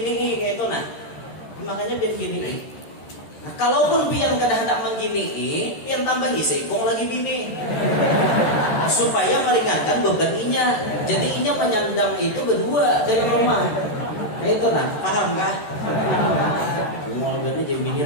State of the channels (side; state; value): right; late; 13 ms